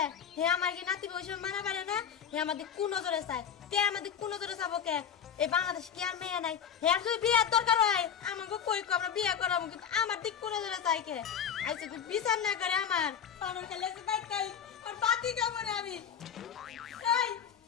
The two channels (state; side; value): quieter; right; 8.0 dB